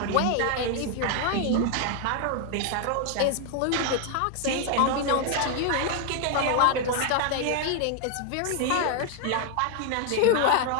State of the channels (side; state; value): both; different; correlation 0.00